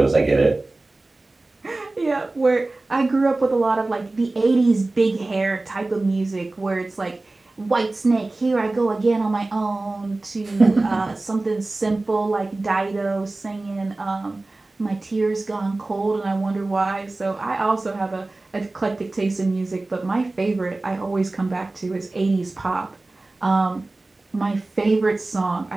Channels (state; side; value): quieter; left; 3.1 dB